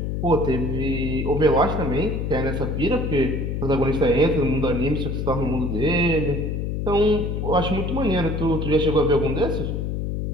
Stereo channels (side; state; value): left; noise; hum, 2 dB below the sound